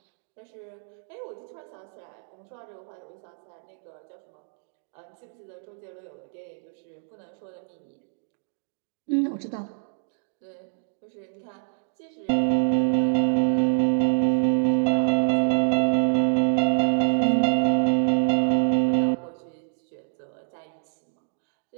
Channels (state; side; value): silent; left; digital silence